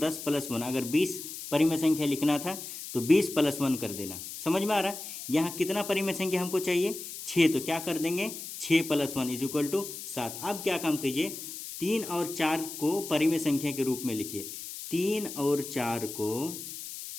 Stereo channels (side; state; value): left; noise; hiss, 9 dB below the sound